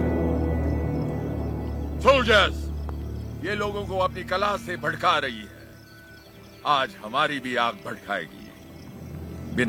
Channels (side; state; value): both; identical; correlation 1.00